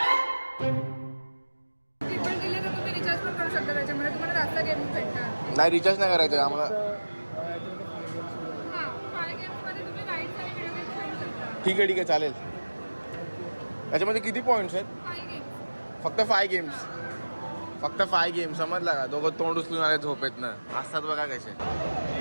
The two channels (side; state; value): both; inverted; correlation -1.00